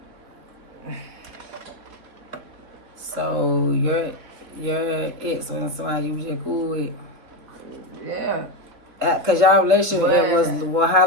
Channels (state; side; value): late; left; 3.7 ms